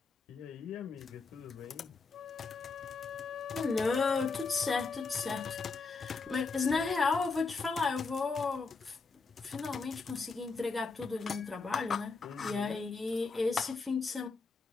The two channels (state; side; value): quieter; right; 4.4 dB